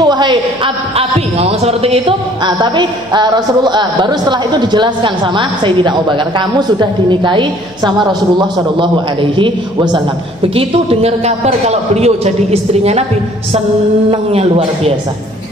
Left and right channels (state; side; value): noise; left; hum, 28 dB below the sound